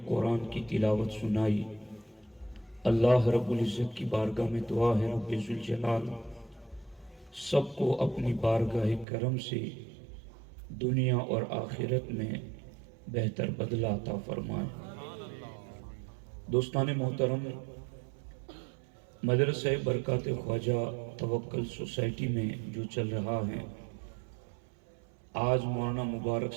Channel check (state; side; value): drops out; left; at 9.1 s